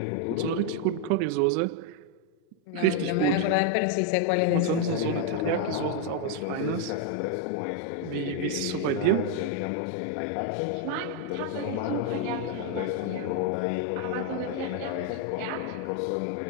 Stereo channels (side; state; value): both; different; correlation 0.01